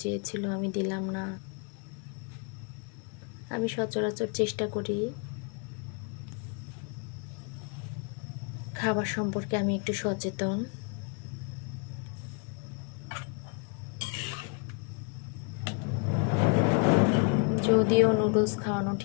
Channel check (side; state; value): right; quieter; 36.6 dB